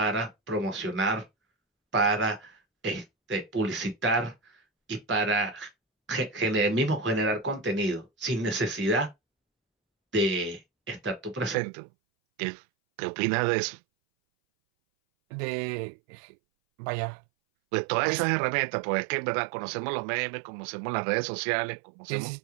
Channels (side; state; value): left; drops out; at 11.6 s